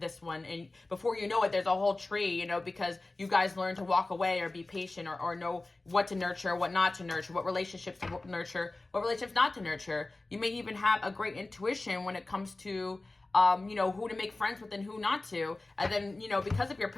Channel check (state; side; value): quieter; right; 3.1 dB